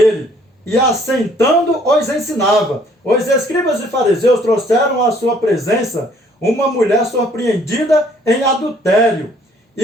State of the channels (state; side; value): normal; both; correlation 0.61